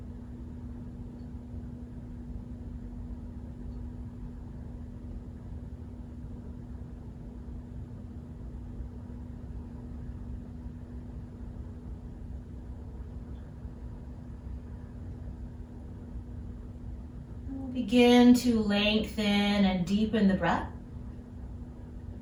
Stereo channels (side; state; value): both; identical; correlation 1.00